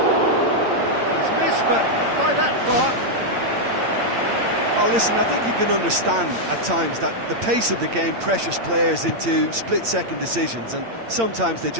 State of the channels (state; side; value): late; left; 8.8 ms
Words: He's missed, but that far. Oh, listen, I think you can understand at times that the pace of the game pressures players into split-second decisions, and sometimes they